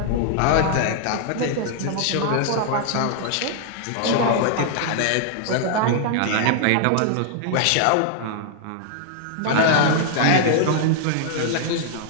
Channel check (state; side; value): different; both; correlation -0.01